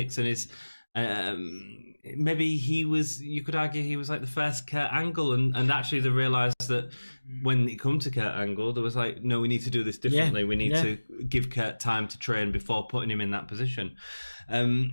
and his... maybe he was, you could argue he was like the first Kurt Angle, and actually they realised that when it come to Kurt Angle, there was like, no, we need to do this differently. We need to give Kurt time to train before putting him in that position.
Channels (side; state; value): both; inverted; correlation -1.00